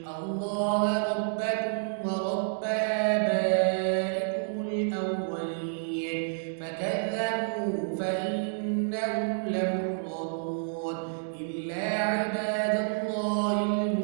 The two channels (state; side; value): silent; left; digital silence